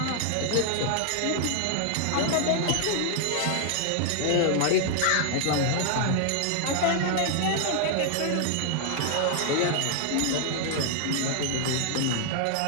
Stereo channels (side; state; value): both; different; correlation 0.00